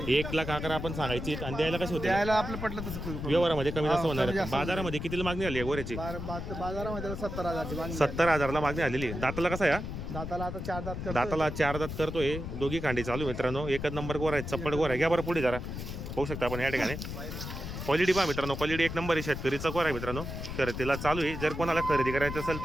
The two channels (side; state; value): left; noise; rumble, 6 dB below the sound